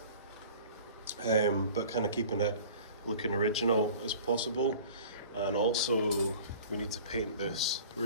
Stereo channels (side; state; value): both; inverted; correlation -0.44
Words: but kind of keeping it looking original as possible. And also we need to paint this